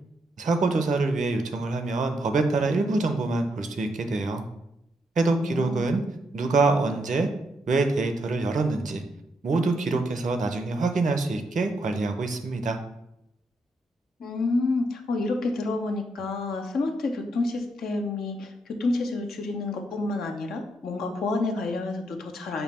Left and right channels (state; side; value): normal; both; correlation 0.78